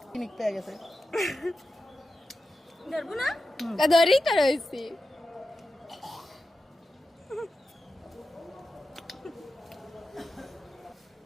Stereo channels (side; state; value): both; normal; correlation 0.91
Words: কিনিক পেয়ে গেছে ধরবো না ধরেই তো রয়েছি